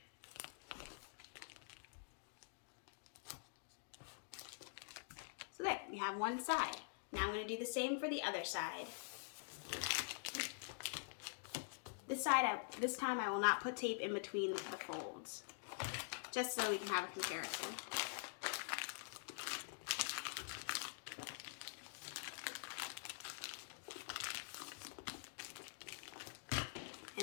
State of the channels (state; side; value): silent; right; digital silence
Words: So there, we have one side. Now I'm going to do the same for the other side. This time I will not put tape in between the folds, just so we can have a comparison.